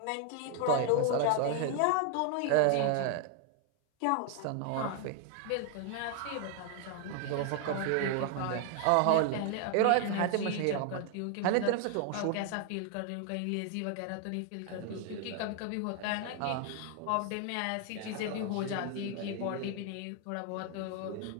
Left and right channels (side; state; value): both; different; correlation 0.00